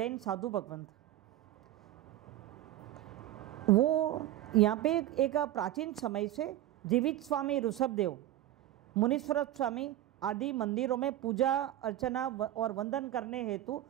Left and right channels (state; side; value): quieter; left; 13.6 dB